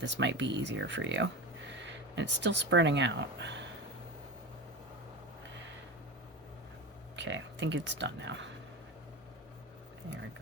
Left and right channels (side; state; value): both; normal; correlation 0.25